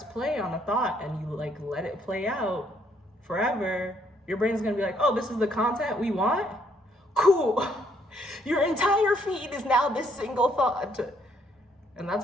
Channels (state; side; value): normal; both; correlation 0.69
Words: play on a thought and you like let it play out forever, your brain's gonna be like, oh, this is the content we want? Cool. Your entire feed is now this single thought. And